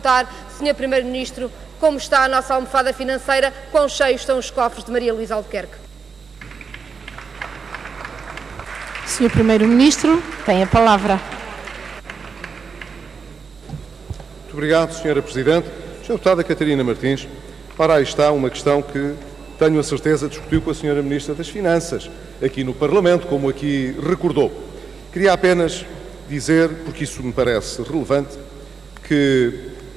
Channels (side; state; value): left; quieter; 5.5 dB